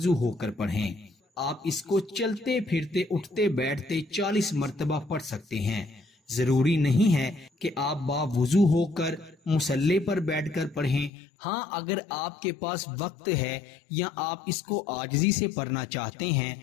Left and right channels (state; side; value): drops out; right; at 11.1 s